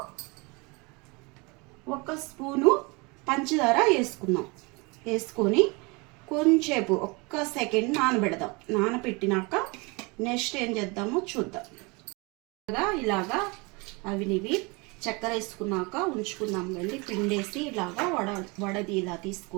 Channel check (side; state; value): left; quieter; 27.9 dB